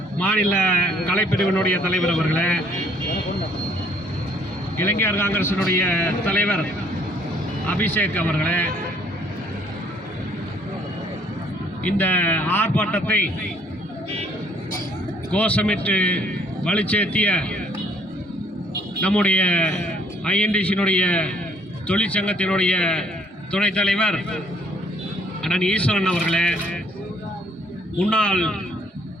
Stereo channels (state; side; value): normal; both; correlation 0.63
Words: மாநில கலைப்பிரிவினுடைய தலைவர் அவர்களே, இளைஞர் காங்கிரசினுடைய தலைவர் அபிஷேக் அவர்களே, இந்த ஆர்ப்பாட்டத்தை கோஷமிட்டு வலுச்சேர்த்திய நம்முடைய ஐஎன்டிசியினுடைய தொழிற்சங்கத்தினுடைய துணைத் தலைவர் அண்ணன் ஈஸ்வரன் அவர்களே, முன்னாள்